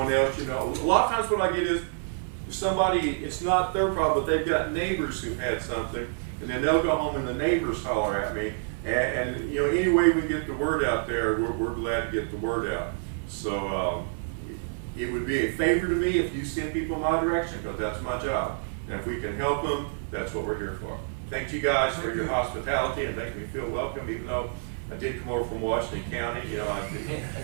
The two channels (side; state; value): left; silent; 59 dB below the other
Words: else, you know, a lot of times what I get is, if somebody, it's not their problem, but they've got neighbors who had something, and then they'll go home and the neighbors holler at me. And you know, any way we get the word out there, we're glad to get the word out. So it would be a favor to me if you send people in my direction, because that's my job. And if we can help them, that's what we're here for. Thank you guys for your hospitality and making me feel welcome, even though I did come over from Washington County. You know, I